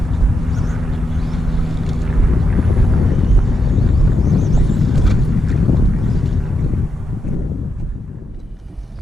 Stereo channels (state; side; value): normal; both; correlation 0.85